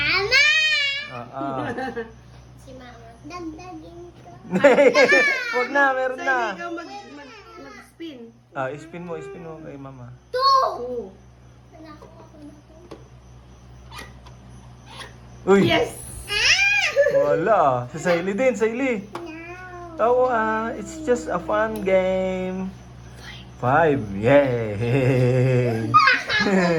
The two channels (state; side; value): identical; both; correlation 1.00